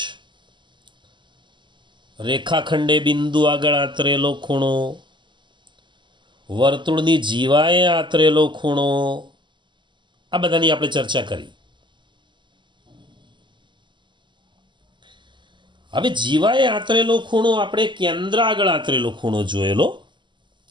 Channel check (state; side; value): late; left; 0.23 ms